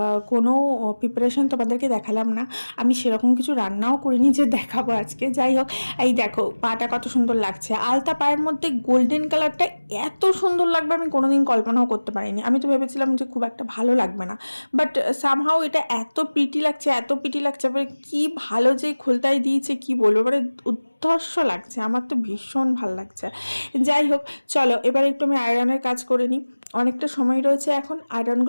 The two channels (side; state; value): both; inverted; correlation -1.00